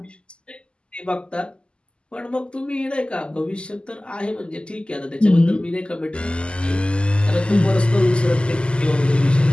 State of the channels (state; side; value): late; right; 0.051 ms